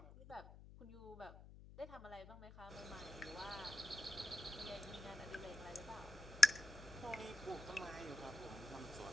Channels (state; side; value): noise; left; hum, 16 dB below the sound